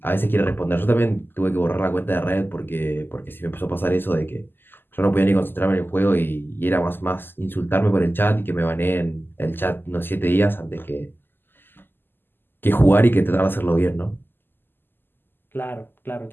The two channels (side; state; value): right; late; 0.097 ms